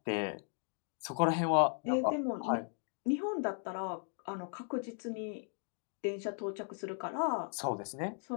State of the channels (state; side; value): silent; right; 53 dB below the other